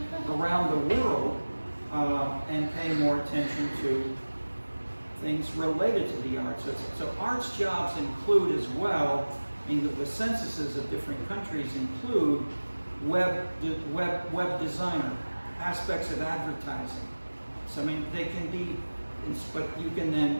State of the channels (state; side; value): inverted; both; correlation -1.00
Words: around the world and paying more attention to things related to the arts. So arts jobs include as well, I mean, the censuses of different countries include web designer, aspects of advertising. So I mean, they can be, but you can then